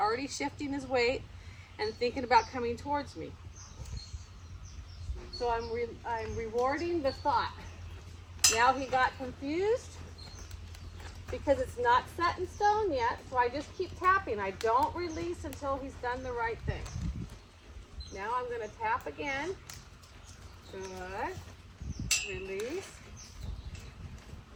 shifting his weight and thinking about coming towards me. So I'm rewarding the thought. Now he got confused because it's not set in stone yet, so I just keep tapping. I don't release until he's done the right thing. Now I'm going to tap again. Good. Release.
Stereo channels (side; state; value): both; identical; correlation 1.00